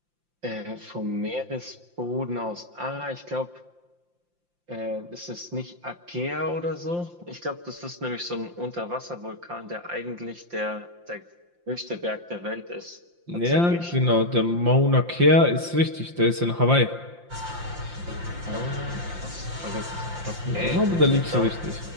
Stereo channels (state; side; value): late; left; 5.8 ms